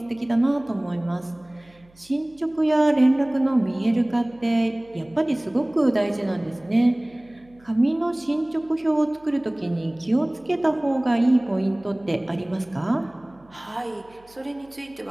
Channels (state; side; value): noise; right; hum, 29 dB below the sound